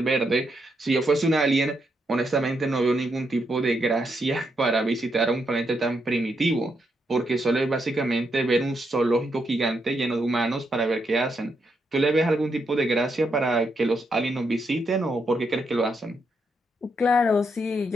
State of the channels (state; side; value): normal; both; correlation 0.80